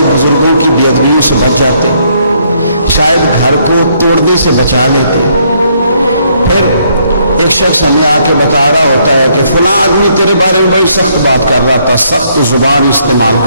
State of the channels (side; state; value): both; inverted; correlation -0.70